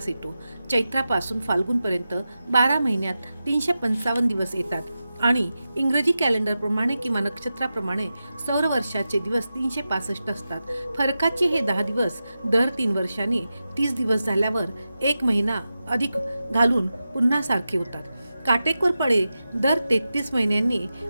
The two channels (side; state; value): both; inverted; correlation -0.92